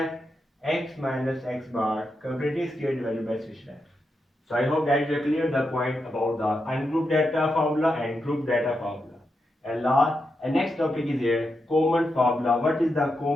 x minus x bar completing square divided by summation f. So I hope that you clear the point about the ungrouped data formula and group data formula. And next topic is here common formula. What is the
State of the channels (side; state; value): both; normal; correlation 0.85